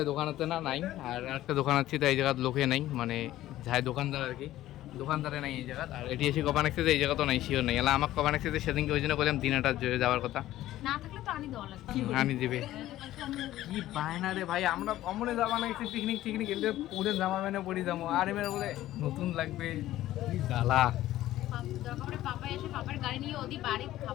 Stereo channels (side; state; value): right; quieter; 14.5 dB